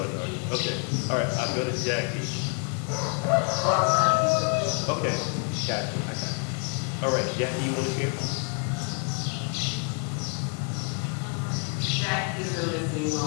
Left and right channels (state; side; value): quieter; right; 37.9 dB